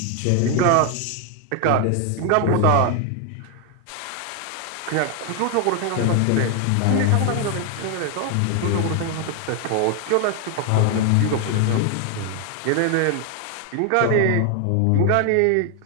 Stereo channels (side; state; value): both; different; correlation 0.01